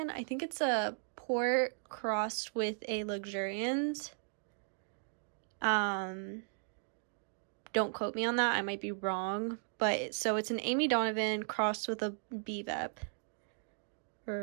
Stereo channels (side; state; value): left; silent; digital silence